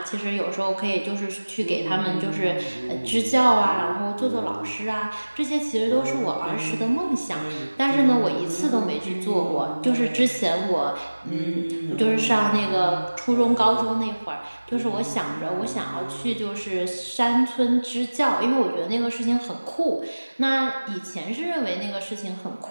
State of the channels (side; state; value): both; inverted; correlation -1.00